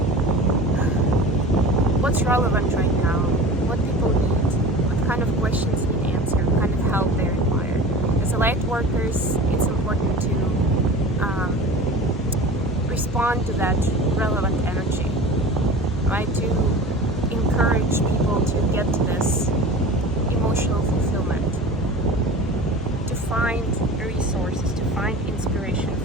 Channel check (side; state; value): both; normal; correlation 0.37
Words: what's relevant right now, what people need, what kind of questions need answered, what kind of help they require. As a light workers, it's important to respond to that relevant energy, right? To encourage people to get to this emotional fulfillment, to find resources, to find inspiration